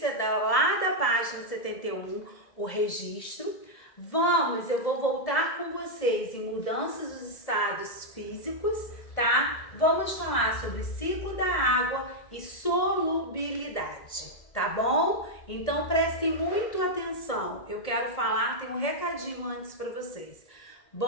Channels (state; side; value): late; right; 1.7 ms